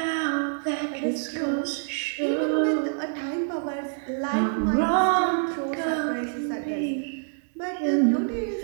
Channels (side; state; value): left; silent; digital silence